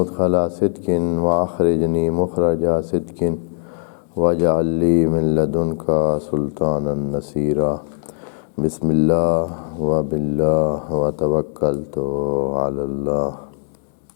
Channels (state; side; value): silent; right; 66 dB below the other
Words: صدق واخرجنی مخرج صدق واجعل لی من لدنک سلطانا نصیرا۔ بسم اللہ وباللہ وتوکلت علی اللہ۔